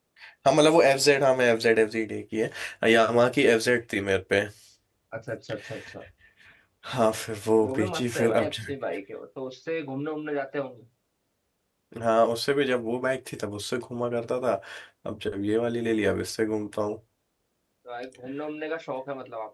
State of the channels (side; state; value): both; identical; correlation 1.00